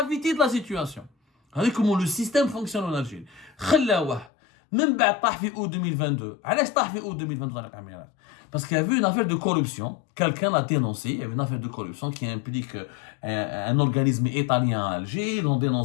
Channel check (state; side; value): drops out; right; at 4.3 s